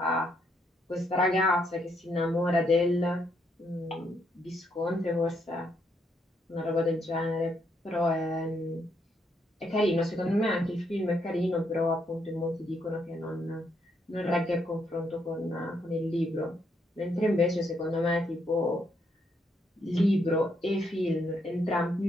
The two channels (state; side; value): normal; both; correlation 0.75